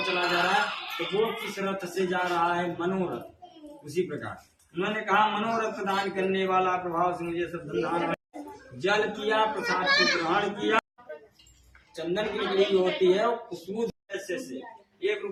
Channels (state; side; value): identical; both; correlation 1.00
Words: चला जा रहा है, तो वो किस रथ से जा रहा है, मनोरथ। उसी प्रकार उन्होंने कहा मनोरथ प्रदान करने वाला प्रभाव से मुझे सब धन जल किया, प्रसाद को ग्रहण किया। चंदन की लकड़ी होती है खुशबू से 1